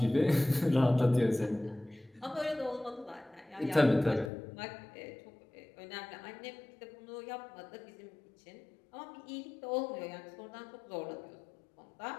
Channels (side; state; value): right; drops out; at 4.3 s